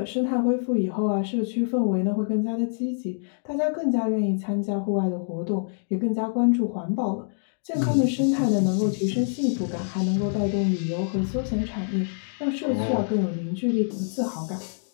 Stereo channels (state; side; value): silent; right; digital silence